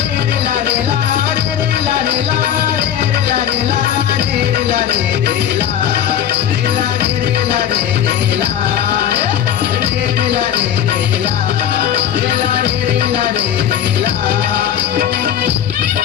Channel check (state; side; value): quieter; right; 9.9 dB